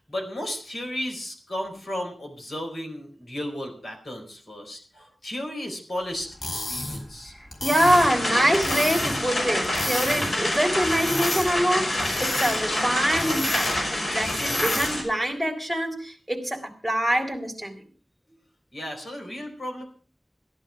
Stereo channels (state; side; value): normal; both; correlation 0.94